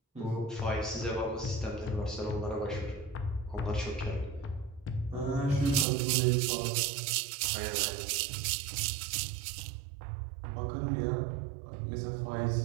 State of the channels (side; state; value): left; drops out; at 5.9 s